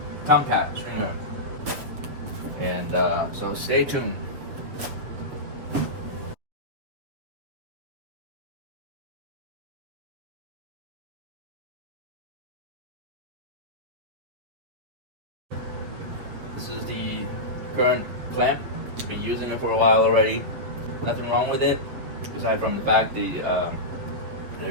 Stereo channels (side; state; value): left; late; 7.7 ms